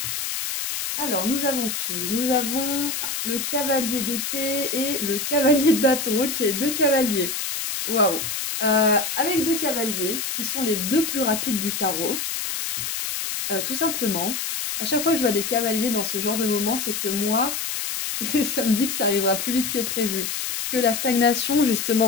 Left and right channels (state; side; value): noise; left; hiss, 3 dB below the sound